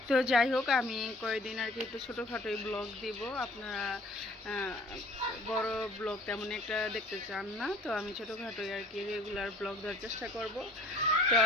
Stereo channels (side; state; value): both; normal; correlation 0.52